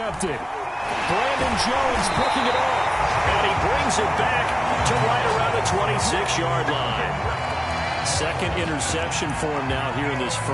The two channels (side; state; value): both; identical; correlation 1.00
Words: Brandon Jones picking it off. And he brings it back to right around the 26-yard line. Second interception for him now here in this